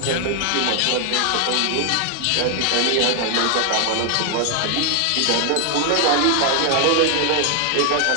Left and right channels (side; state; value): both; different; correlation 0.00